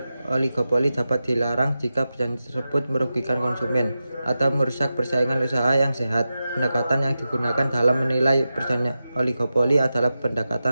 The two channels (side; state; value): both; inverted; correlation -0.92